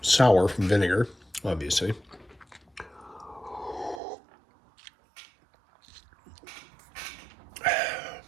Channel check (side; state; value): left; drops out; at 4.0 s